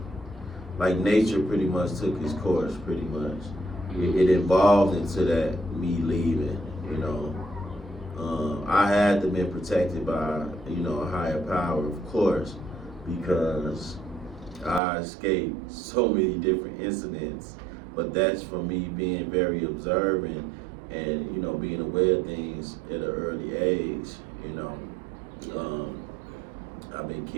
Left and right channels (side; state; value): left; drops out; at 14.8 s